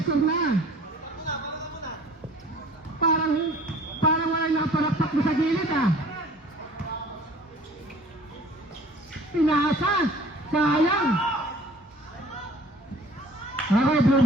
na. Parang wala nakaparakpak mo sa gilid ah. Pinasa. Sayang. Okay, blue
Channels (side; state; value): both; normal; correlation 0.50